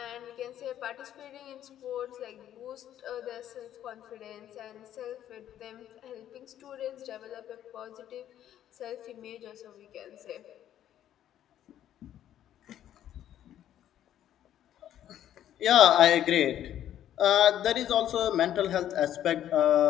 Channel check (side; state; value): right; quieter; 11.3 dB